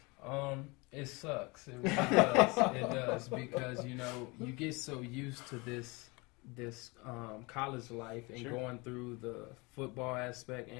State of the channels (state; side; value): quieter; right; 26.5 dB